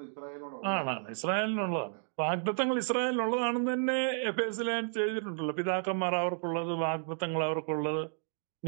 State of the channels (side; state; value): left; silent; 56 dB below the other